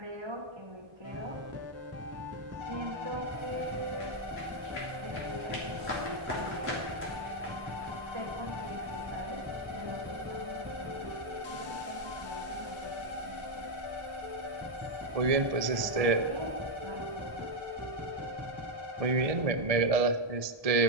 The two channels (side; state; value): left; late; 1.6 ms